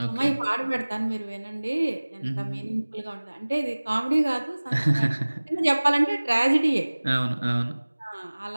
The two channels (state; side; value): inverted; both; correlation -1.00